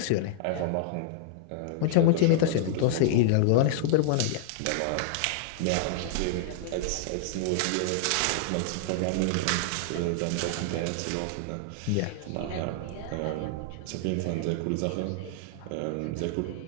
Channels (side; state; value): both; different; correlation -0.01